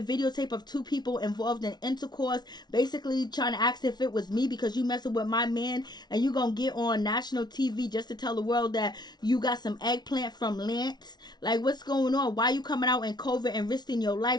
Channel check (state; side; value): late; right; 0.20 ms